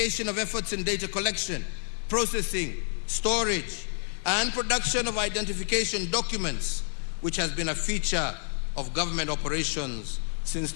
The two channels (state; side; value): silent; right; 58 dB below the other